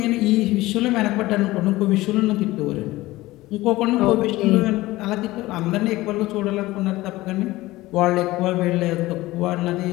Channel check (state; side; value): quieter; right; 18.4 dB